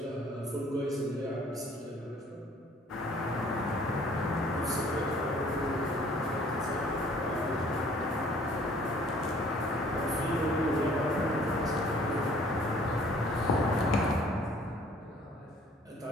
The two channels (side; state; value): both; normal; correlation 0.56